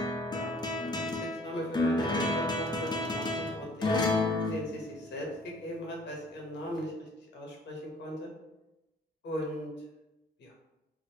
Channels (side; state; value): both; normal; correlation 0.55